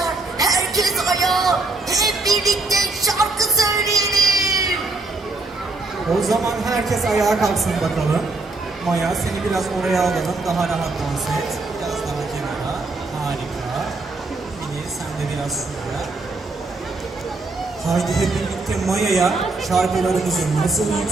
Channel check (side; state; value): left; quieter; 3.4 dB